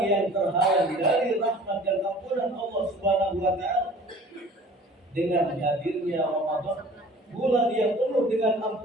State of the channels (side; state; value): both; normal; correlation 0.47